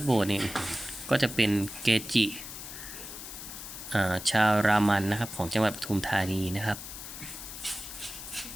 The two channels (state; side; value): noise; left; hiss, 10 dB below the sound